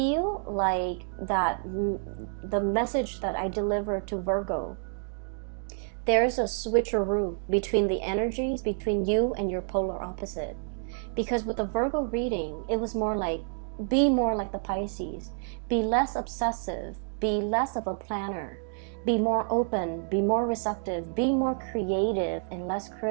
like that the message that I deliver to Virgo, there's a switcheroo between the energies between you and your polar opposite. Because with the Virgo reading, it was more like, be more like the Pisces. Be less obsessive. Be less of a planner. Be more open. Be more receptive. Be more creative and less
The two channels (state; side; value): silent; left; digital silence